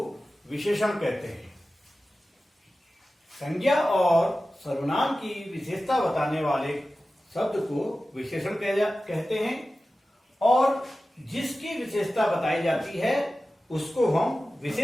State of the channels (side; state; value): both; normal; correlation 0.95